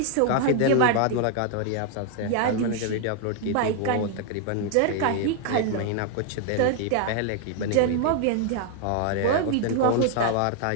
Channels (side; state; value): both; different; correlation 0.00